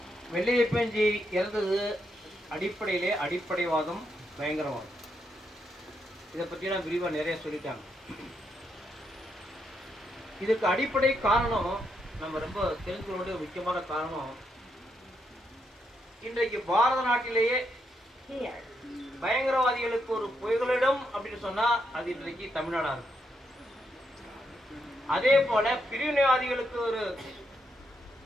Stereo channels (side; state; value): both; normal; correlation 0.80